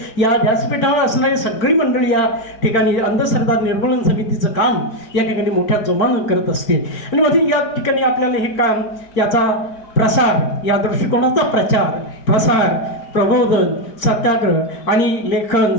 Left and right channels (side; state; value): right; late; 4.4 ms